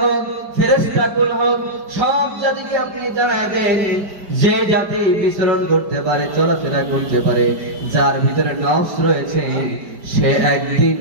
হোক, ফেরেশতাকুল হোক, সব জাতিকে আপনি জানায় দেন যে জাতি বিচরণ করতে পারে, চলাফেরা করতে পারে, যার ভিতরে নফস রয়েছে, সে একদিন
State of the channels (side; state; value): left; late; 5.0 ms